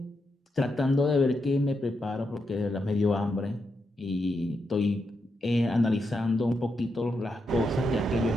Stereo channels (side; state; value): both; normal; correlation 0.84